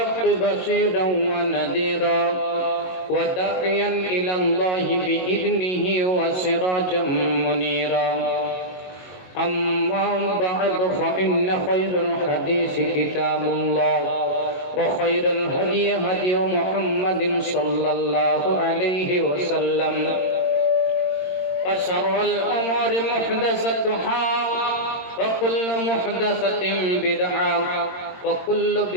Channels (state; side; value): late; right; 22 ms